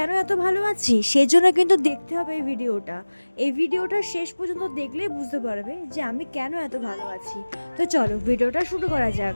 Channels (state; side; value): inverted; both; correlation -1.00